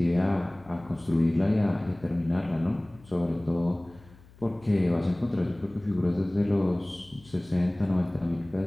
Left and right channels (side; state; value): left; noise; hum, 24 dB below the sound